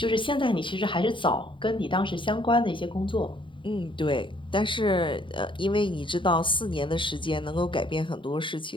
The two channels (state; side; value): late; right; 0.24 ms